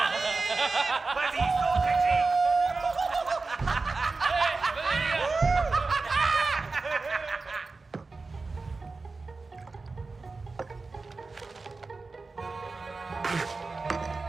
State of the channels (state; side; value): quieter; left; 3.9 dB